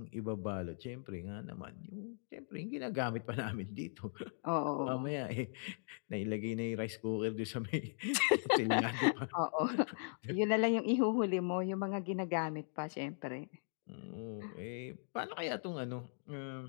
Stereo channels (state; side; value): silent; right; digital silence